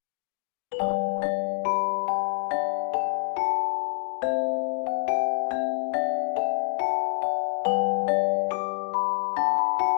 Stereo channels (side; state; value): right; silent; digital silence